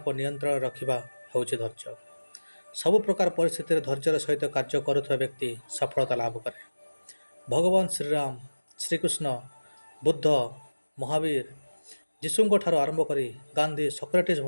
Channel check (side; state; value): both; inverted; correlation -1.00